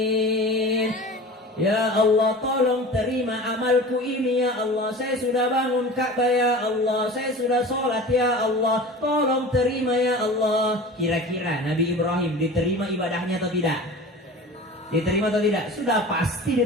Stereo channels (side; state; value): both; normal; correlation 0.37